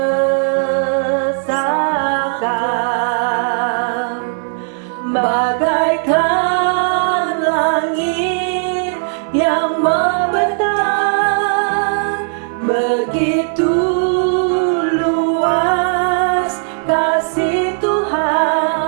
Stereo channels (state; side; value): silent; left; 59 dB below the other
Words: bagaikan langit yang membentang, begitu luas kasih